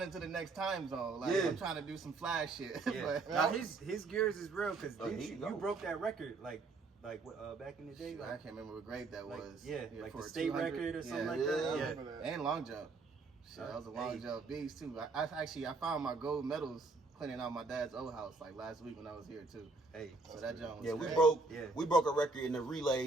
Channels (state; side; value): quieter; left; 3.8 dB